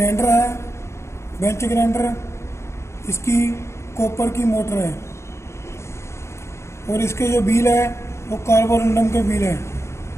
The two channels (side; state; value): right; late; 0.13 ms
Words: है, बेंच ग्राइंडर। इसकी कॉपर की मोटर है और इसके जो व्हील है वो कार्बोरंडम के व्हील है